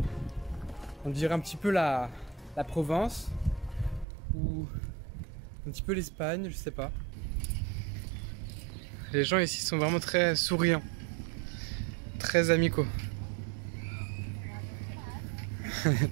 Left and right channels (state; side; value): drops out; left; at 4.0 s